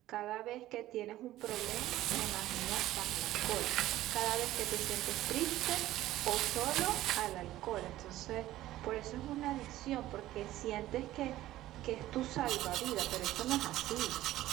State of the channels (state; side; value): quieter; left; 15.0 dB